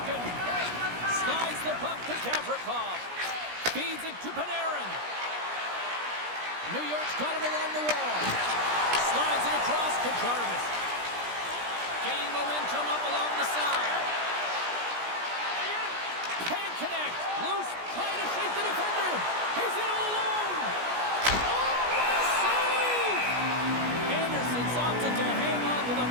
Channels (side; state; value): left; late; 17 ms